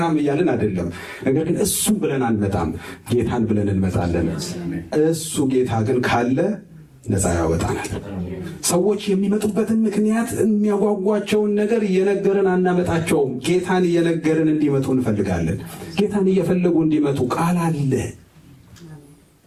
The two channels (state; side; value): identical; both; correlation 1.00